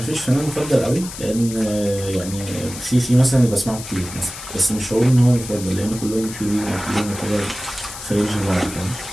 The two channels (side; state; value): left; noise; hiss, 11 dB below the sound